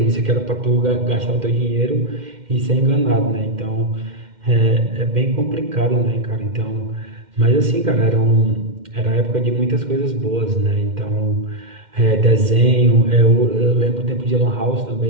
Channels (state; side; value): late; left; 2.1 ms